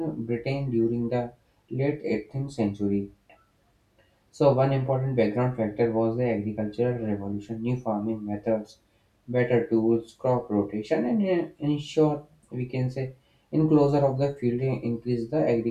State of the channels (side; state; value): both; identical; correlation 1.00